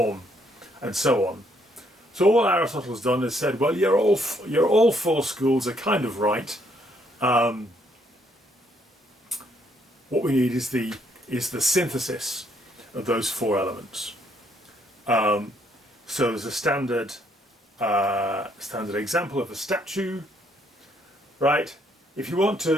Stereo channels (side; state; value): both; normal; correlation 0.70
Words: and so on. So all Aristotle's done is said, well, you're all 4 schools are kind of right. What we need is the synthesis of those 4 elements. So there's a standard example of a statue, right? If you want